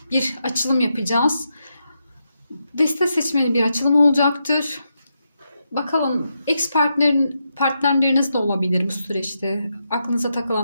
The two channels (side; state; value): both; inverted; correlation -0.84